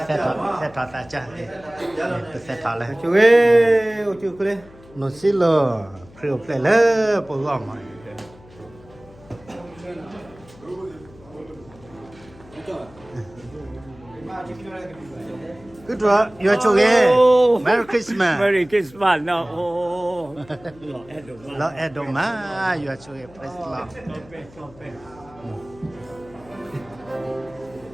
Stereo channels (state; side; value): noise; left; hum, 23 dB below the sound